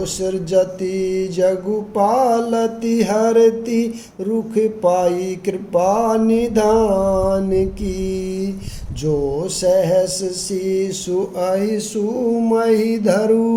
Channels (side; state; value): both; identical; correlation 1.00